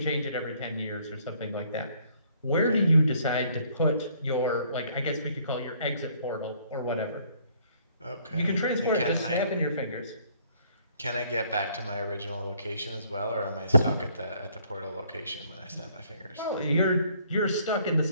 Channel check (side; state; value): both; inverted; correlation -0.63